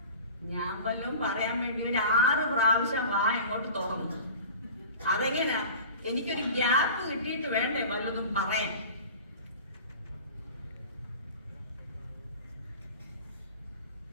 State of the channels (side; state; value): both; inverted; correlation -0.38